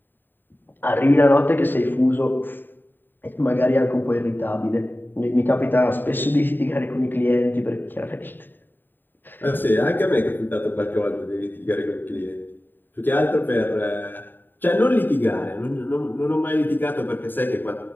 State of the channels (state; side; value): late; right; 0.093 ms